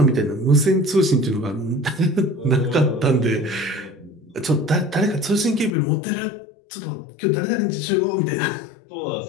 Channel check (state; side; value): drops out; right; at 5.7 s